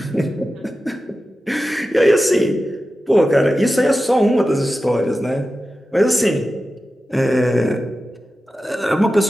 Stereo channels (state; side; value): normal; both; correlation 0.93